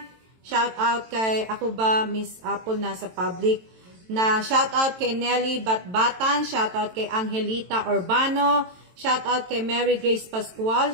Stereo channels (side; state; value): left; late; 23 ms